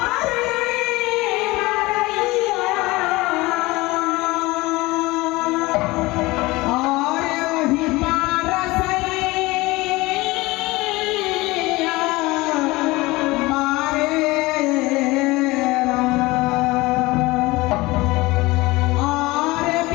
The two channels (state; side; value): quieter; right; 21.3 dB